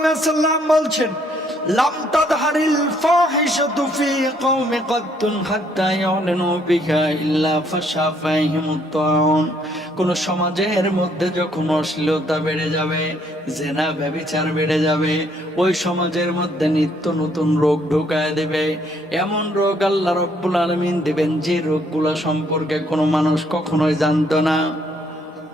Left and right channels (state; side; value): normal; both; correlation 0.67